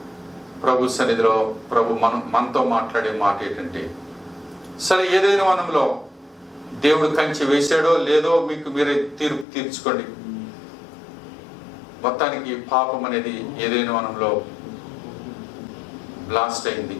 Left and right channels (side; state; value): right; drops out; at 9.5 s